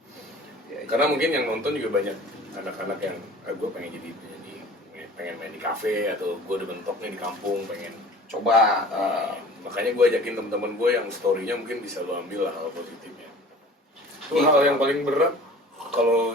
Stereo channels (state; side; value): normal; both; correlation 0.45